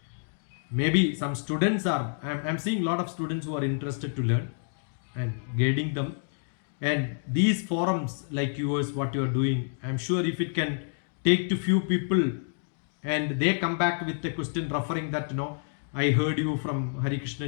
Maybe some students are, I'm seeing a lot of students who are interested to learn and guiding them. And these forums like yours, what you are doing, I'm sure if it can take to few people and they come back with the question referring that, I heard you from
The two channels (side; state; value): right; silent; digital silence